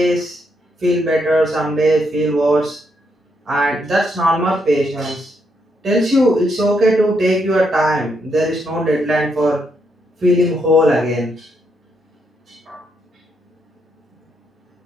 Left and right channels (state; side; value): normal; both; correlation 0.77